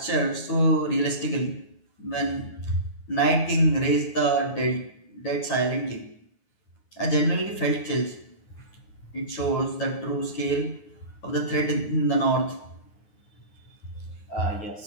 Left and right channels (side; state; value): right; late; 9.6 ms